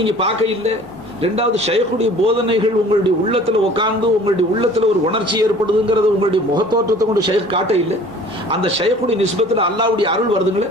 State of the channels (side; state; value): both; normal; correlation 0.48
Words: பார்க்க இல்லை. ரெண்டாவது, ஷைഖுடைய போதனைகள் உங்களுடைய உள்ளத்துல உட்கார்ந்து உங்களுடைய உள்ளத்துல ஒரு உணர்ச்சி ஏற்படுதுங்கிறது உங்களுடைய முகத்தோற்றத்தை கொண்டு ஷைഖ் காட்ட இல்லை. அந்த ஷைഖுடைய நிஸ்பத்துல அல்லாஹ்வுடைய அருள் வருதுங்களே,